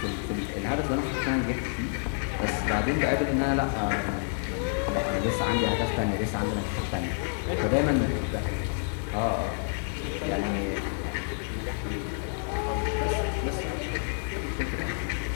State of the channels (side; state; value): right; silent; 59 dB below the other